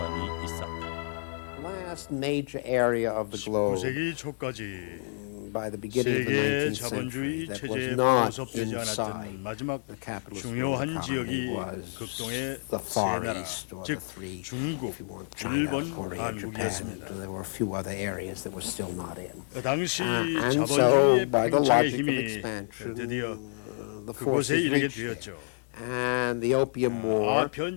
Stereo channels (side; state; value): right; silent; digital silence